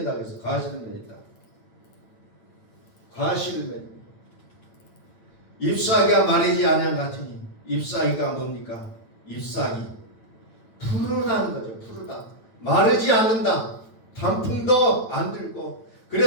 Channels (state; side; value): late; right; 9.0 ms